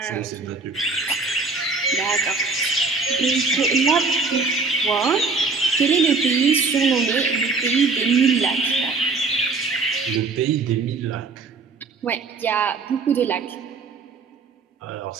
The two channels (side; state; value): left; quieter; 4.2 dB